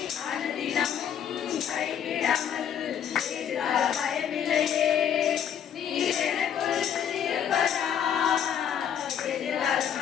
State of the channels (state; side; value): quieter; right; 8.9 dB